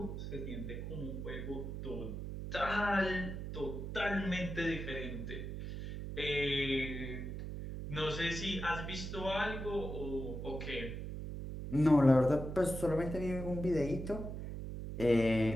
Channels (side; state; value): right; noise; hum, 6 dB below the sound